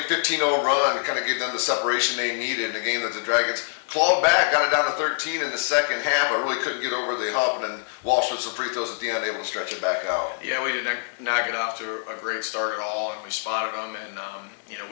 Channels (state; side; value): silent; right; digital silence